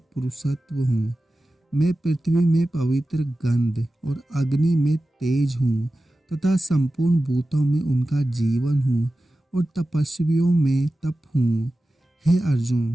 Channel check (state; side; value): normal; both; correlation 0.94